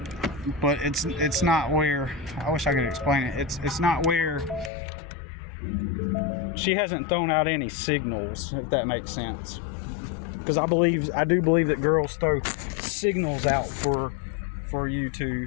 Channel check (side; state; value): right; drops out; at 4.7 s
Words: it's not where, I wish I could explain it. It's not where she hasn't thrown out any signals, if that makes sense. Because I do believe that girls throw signals out for you